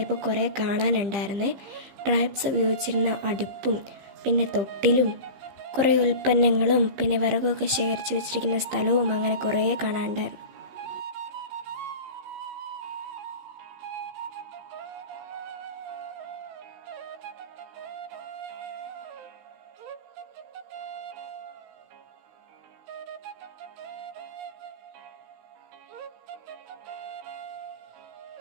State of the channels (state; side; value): late; left; 15 ms